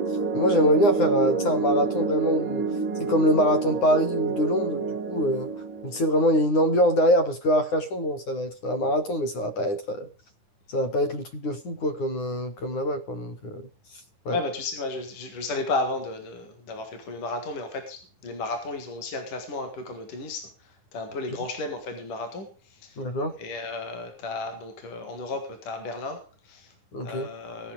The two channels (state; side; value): late; right; 9.7 ms